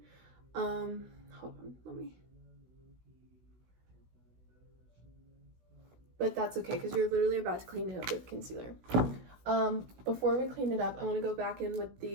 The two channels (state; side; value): late; left; 16 ms